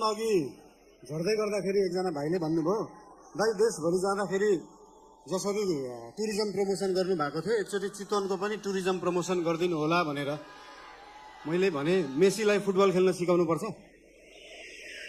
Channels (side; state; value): both; identical; correlation 1.00